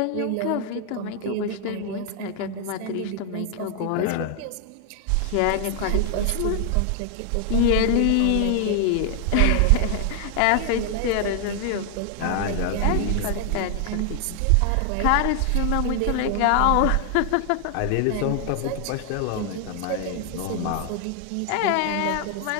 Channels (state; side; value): different; both; correlation 0.00